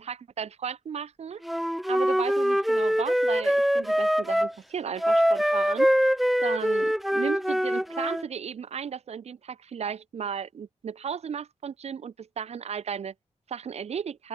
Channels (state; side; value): normal; both; correlation 0.89